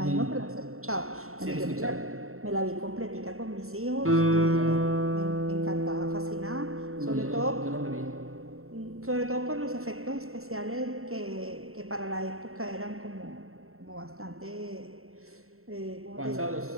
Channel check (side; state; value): left; late; 0.63 ms